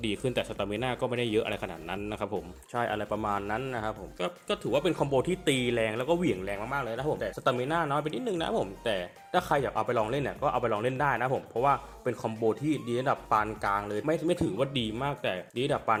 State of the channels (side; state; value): both; identical; correlation 1.00